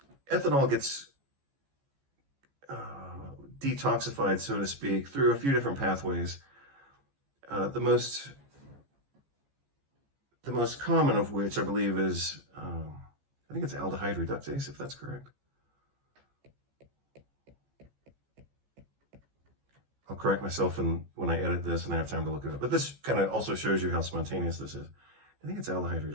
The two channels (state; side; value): late; left; 14 ms